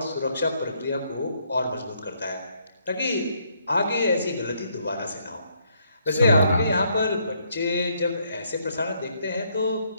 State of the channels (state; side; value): inverted; both; correlation -0.72